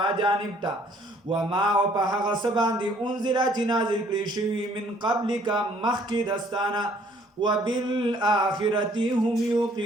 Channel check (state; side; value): normal; both; correlation 0.61